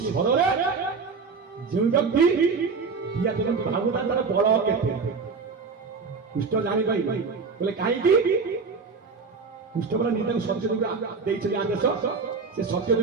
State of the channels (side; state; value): left; quieter; 4.8 dB